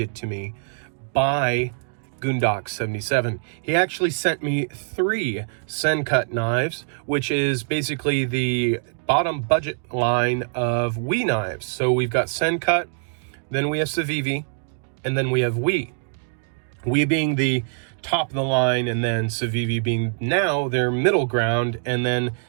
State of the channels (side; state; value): left; silent; digital silence